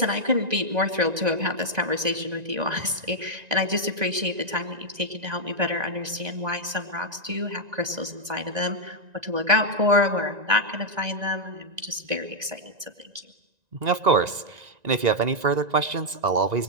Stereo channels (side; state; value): left; late; 1.9 ms